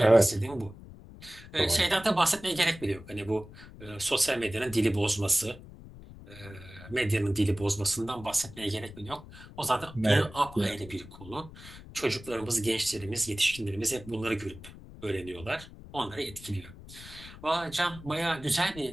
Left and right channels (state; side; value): noise; left; rumble, 17 dB below the sound